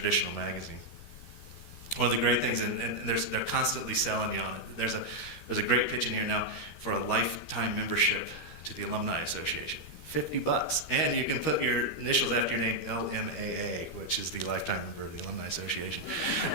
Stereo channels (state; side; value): late; right; 13 ms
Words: magazine. One of the great things, and they're constantly selling you on it. There's a great pitch in here now for a lifetime membership to the Alumni Association. $50, and you can put your initials after your name, LMAA, which is the lifetime member of the Alumni Association.